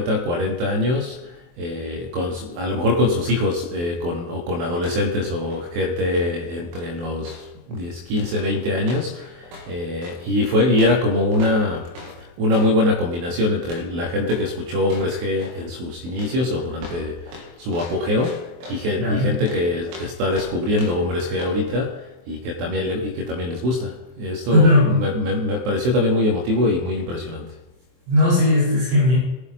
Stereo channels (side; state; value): left; late; 23 ms